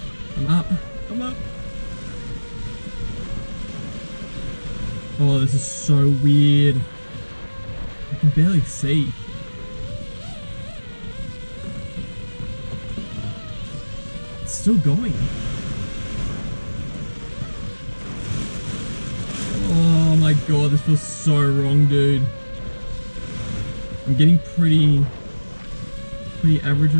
I'm up. I'm up. Oh, this is so weird. I can barely see. It's still going. Oh my god, this feels so wrong, dude. I'm getting pretty average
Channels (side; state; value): both; inverted; correlation -1.00